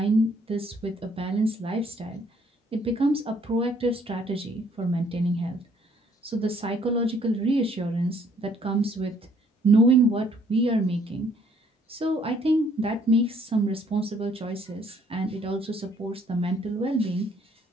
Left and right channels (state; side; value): normal; both; correlation 0.64